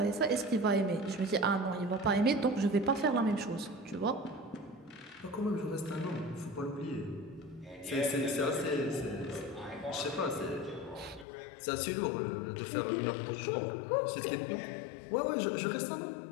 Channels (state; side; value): drops out; right; at 11.2 s